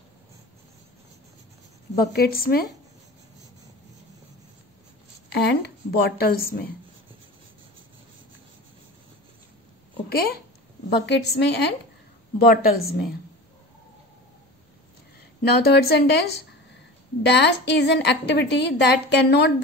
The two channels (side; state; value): both; normal; correlation 0.33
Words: बकेट्स में एंड बॉटल्स में. ओके, बकेट्स में एंड बॉटल्स में. Now third sentence, dash is an activity that cannot